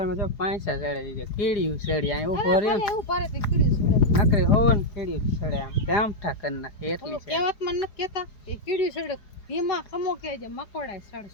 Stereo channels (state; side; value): late; right; 4.8 ms